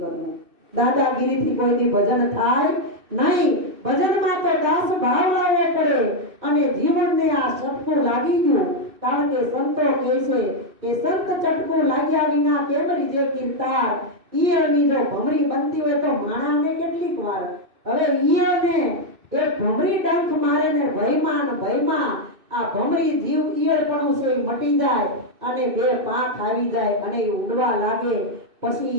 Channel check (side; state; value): left; late; 2.6 ms